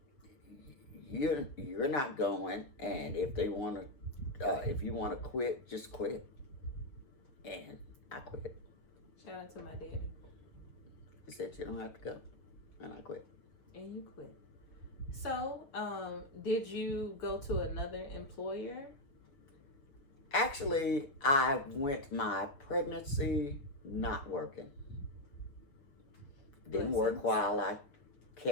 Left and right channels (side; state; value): right; late; 6.8 ms